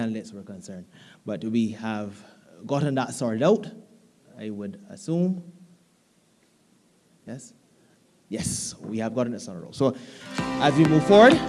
were concerned. But we have gotten that sorted out, I would assume. Yes? Yes, we have gotten it sorted out. So as we move forward,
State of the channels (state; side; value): identical; both; correlation 1.00